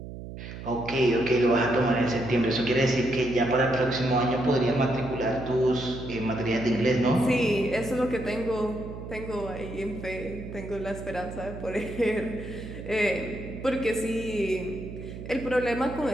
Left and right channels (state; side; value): noise; right; hum, 11 dB below the sound